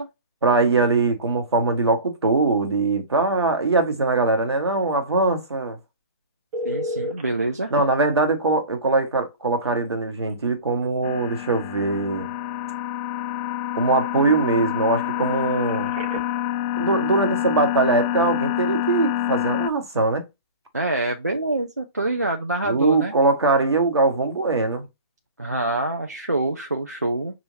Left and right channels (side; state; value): both; inverted; correlation -0.34